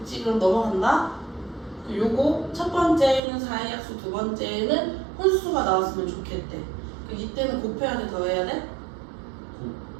그럼 넘어간다. 요거 첫 번째는 4의 약수, 두 번째는 혼수가 나왔으면 좋겠대. 이때는 곱해야 돼, 더해야 돼?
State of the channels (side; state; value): left; drops out; at 3.2 s